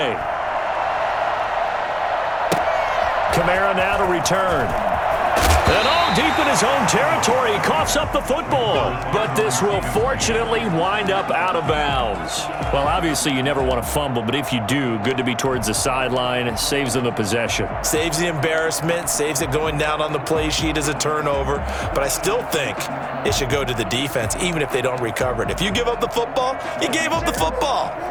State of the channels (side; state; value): both; identical; correlation 1.00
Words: Kamara now to return. And all deep in his own territory, he coughs up the football. But this will fortunately wind up out of bounds. Well, obviously you never want to fumble, but if you do, good to be towards the sideline. It saves them the possession. Saves the embarrassment, saves it going down on the play sheet as a turnover. But I still think it should go to the defense, even if they don't recover it. If you give up the football, you gave up the football.